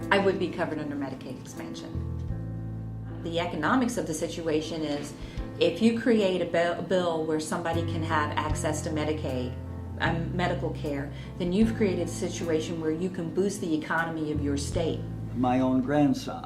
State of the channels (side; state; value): both; identical; correlation 1.00